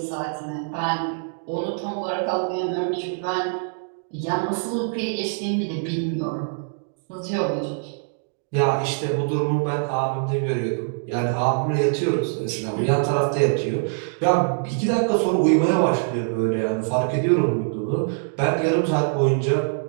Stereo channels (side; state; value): left; silent; digital silence